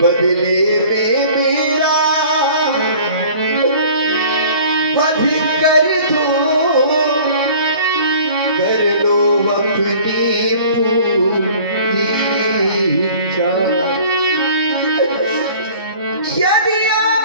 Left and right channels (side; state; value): both; inverted; correlation -0.48